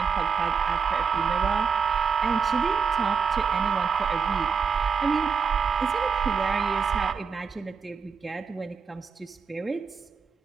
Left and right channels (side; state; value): left; quieter; 5.8 dB